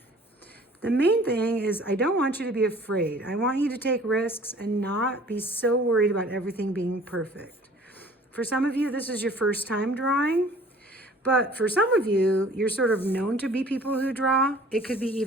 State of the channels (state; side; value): normal; both; correlation 0.51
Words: The main thing is I don't want you to be afraid. I want you to take risks and not be so worried about everything being perfect. For some of you, this is your first time drawing, But for some of you, you're sort of known to be people who draw. It could be